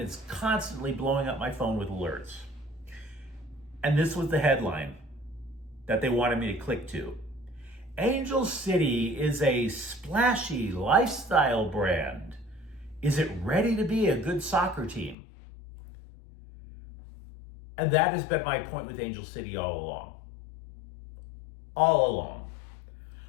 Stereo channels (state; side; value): drops out; right; at 15.2 s